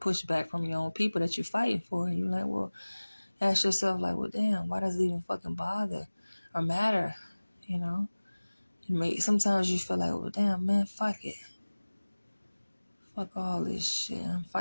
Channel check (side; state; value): both; inverted; correlation -1.00